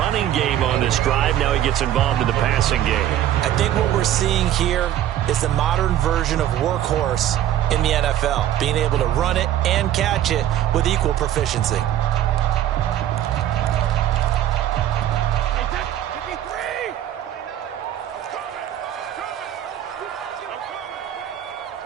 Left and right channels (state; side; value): quieter; left; 12.0 dB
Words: game on this drive. Now he gets involved in the passing game. I think what we're seeing here is the modern version of workhorse in the NFL, being able to run it and catch it with equal proficiency.